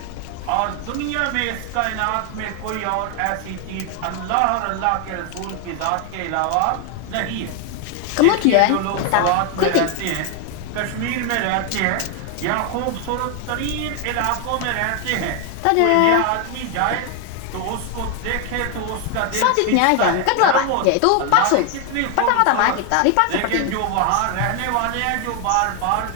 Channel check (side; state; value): both; different; correlation 0.01